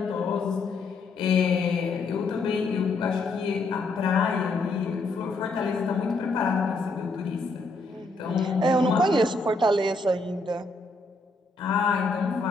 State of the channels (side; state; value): right; quieter; 3.2 dB